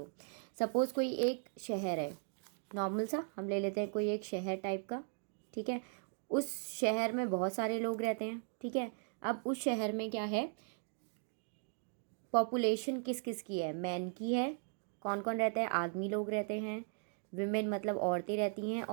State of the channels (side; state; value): left; silent; 53 dB below the other